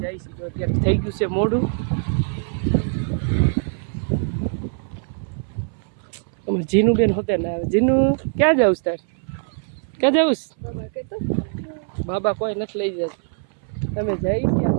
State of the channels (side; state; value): left; silent; 60 dB below the other